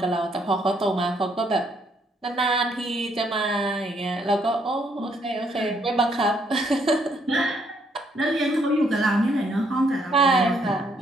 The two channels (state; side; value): normal; both; correlation 0.71